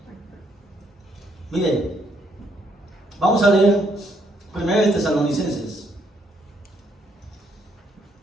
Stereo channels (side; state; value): both; normal; correlation 0.72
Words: Miren, vamos a leer 1 Tesalonicenses.